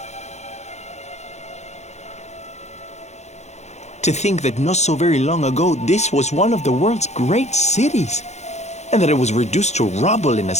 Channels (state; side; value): late; right; 0.33 ms